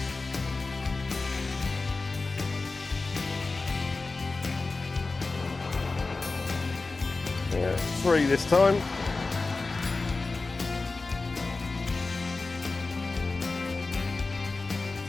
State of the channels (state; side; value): quieter; right; 3.7 dB